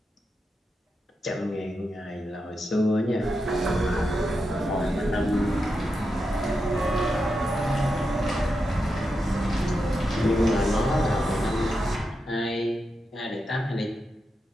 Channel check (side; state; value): both; normal; correlation 0.87